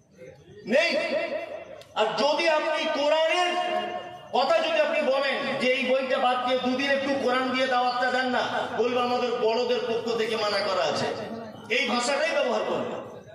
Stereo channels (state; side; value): identical; both; correlation 1.00